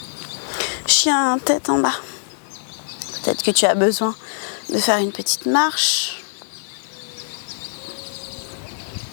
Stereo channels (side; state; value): right; silent; digital silence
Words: Chien, tête en bas. Peut-être que tu as besoin de faire une petite marche.